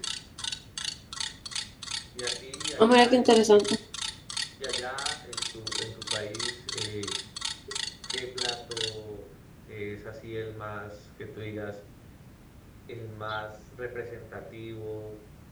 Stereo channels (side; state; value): both; identical; correlation 1.00